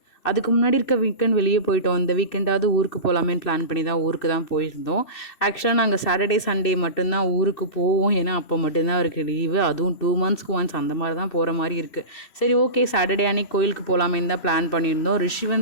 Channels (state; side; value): late; right; 2.7 ms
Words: அதுக்கு முன்னாடி இருக்க வீக்கெண்ட் வெளியே போயிட்டோம். இந்த வீக்கெண்டாவது ஊருக்கு போகலாமேன்னு பிளான் பண்ணி தான் ஊருக்கு தான் போயிருந்தோம். ஆக்சுவலாக நாங்கள் சாட்டர்டே, சண்டே மட்டும்தான் ஊருக்கு போவோம். ஏன்னா அப்போ மட்டும்தான் அவருக்கு லீவு. அதுவும் 2 மந்த்ஸ்க்கு ஒன்ஸ் அந்த மாதிரி தான் போகிற மாதிரி இருக்குது. சரி, ஓகே, சாட்டர்டே அன்னைக்கு கோயிலுக்கு போகலாமேன்னு தான் பிளான் பண்ணியிருந்தோம்.